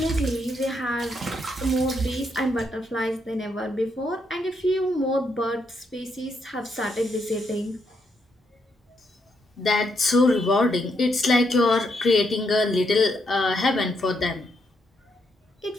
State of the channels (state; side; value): normal; both; correlation 0.78